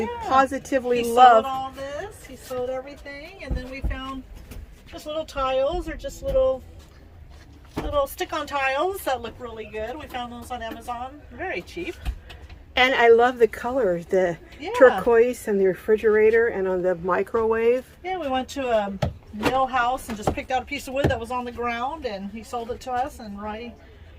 positively he love. Sewed all this. He sewed everything, and then we found just little tiles or just little stick-on tiles that look really good. We found those on Amazon, very cheap. And I love the color, the turquoise and the refrigerator and on the microwave. Yeah, we went to a mill house and just picked out a piece of wood that was on the ground, and he sold it to us, and Roy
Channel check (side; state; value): both; identical; correlation 1.00